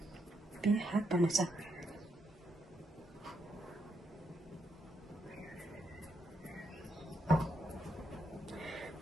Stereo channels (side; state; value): both; normal; correlation 0.78